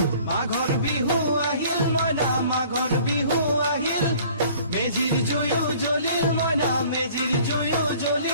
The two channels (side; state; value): both; inverted; correlation -0.52